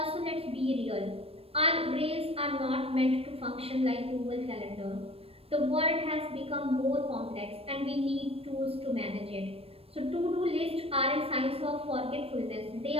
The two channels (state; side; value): late; left; 0.28 ms